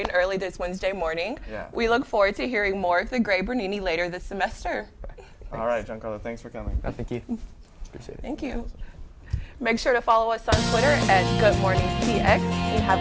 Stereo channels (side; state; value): both; identical; correlation 1.00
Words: and early this Wednesday morning. Yeah. We look forward to hearing more of the Great Bernini later this semester. All right, Giancarlo. Thanks for coming. No, thank you. Appreciate it. Thank you. Make sure to follow us on Twitter at GoodMorningCX and